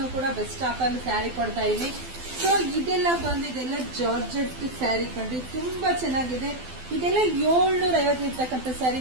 ಬೆಸ್ಟ್ ಆಫರ್ ಸ್ಯಾರಿ ಕೊಡ್ತಾ ಇದೀನಿ. ಸೊ ಇದೆಲ್ಲ ಬಂದಿದೆಲ್ಲ ಜಾರ್ಜೆಟ್ ಸ್ಯಾರಿ ಕಂಡ್ರಿ, ತುಂಬಾ ಚೆನ್ನಾಗಿದೆ. ಇದೆಲ್ಲ 750 ಇರ್ತಕ್ಕಂಥ ಸ್ಯಾರಿ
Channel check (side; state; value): left; late; 12 ms